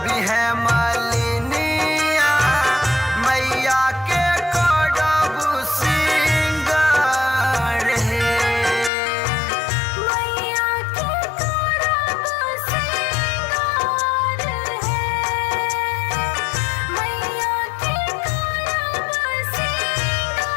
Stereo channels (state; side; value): drops out; right; at 8.9 s